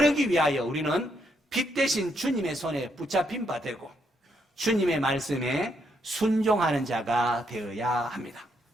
위하여 우리는 빛 대신 주님의 손에 붙잡힌 바 되고 주님의 말씀에 순종하는 자가 되어야 합니다.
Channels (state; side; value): normal; both; correlation 0.76